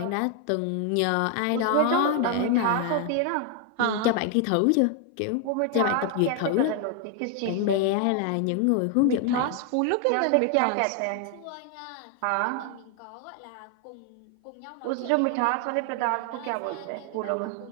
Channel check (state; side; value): different; both; correlation 0.00